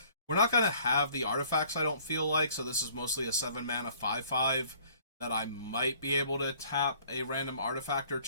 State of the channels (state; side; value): inverted; both; correlation -0.57